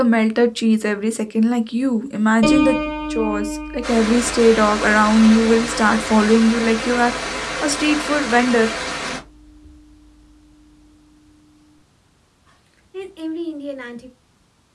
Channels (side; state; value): both; identical; correlation 1.00